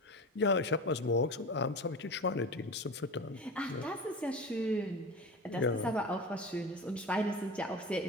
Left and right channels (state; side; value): normal; both; correlation 0.29